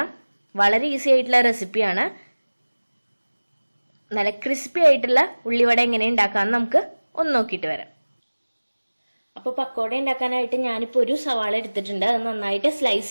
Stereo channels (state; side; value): inverted; both; correlation -1.00